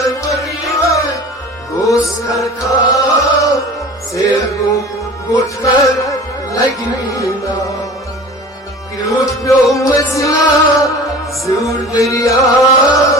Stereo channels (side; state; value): both; normal; correlation 0.39